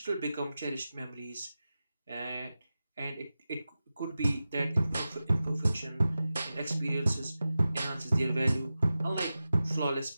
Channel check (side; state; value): both; inverted; correlation -0.94